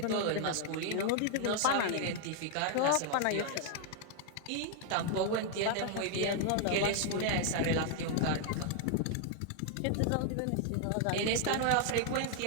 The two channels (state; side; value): different; both; correlation 0.00